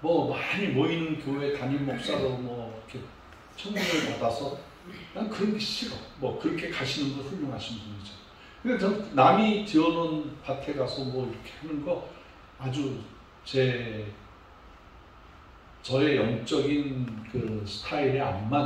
많이 모이는 교회 담임 목사로 이렇게 청문을 받아서 난 그런 게 싫어. 그렇게 가시는 거 훌륭하신 분이죠. 근데 전 남이 지어놓은 밭에 가서 이렇게 하는 거 아주 저의 영적인 그 스타일에 안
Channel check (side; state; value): both; identical; correlation 1.00